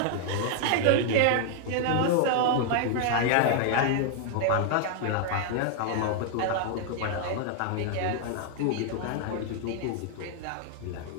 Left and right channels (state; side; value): different; both; correlation 0.00